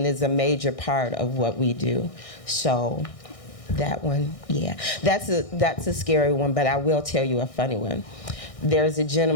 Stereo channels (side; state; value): right; late; 1.6 ms